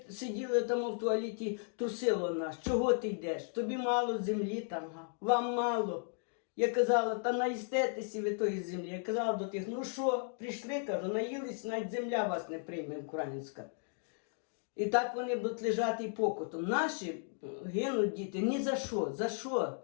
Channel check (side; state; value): right; silent; 54 dB below the other